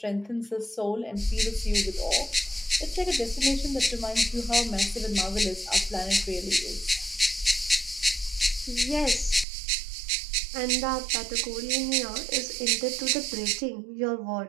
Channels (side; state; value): left; drops out; at 9.5 s